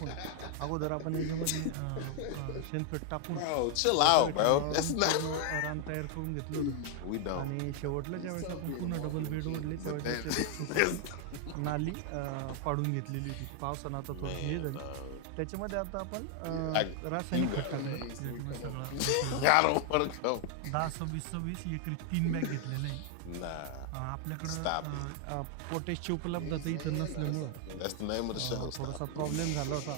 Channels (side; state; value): both; different; correlation 0.00